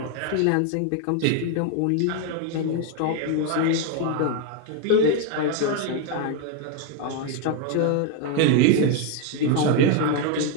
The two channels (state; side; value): different; both; correlation 0.01